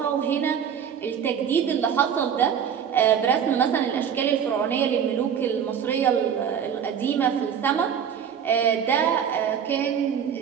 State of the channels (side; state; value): left; quieter; 8.1 dB